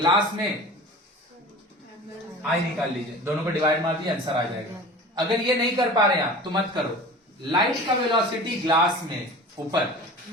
में आई निकाल लीजिए, दोनों को डिवाइड मार दिए, आंसर आ जाएगा। अगर ये नहीं कर पा रहे हैं आप तो मत करो। लाइट का वेलोसिटी ग्लास में ऊपर,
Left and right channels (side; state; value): both; normal; correlation 0.38